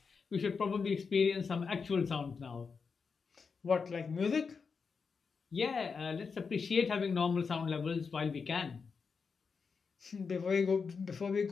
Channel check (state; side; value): quieter; right; 5.3 dB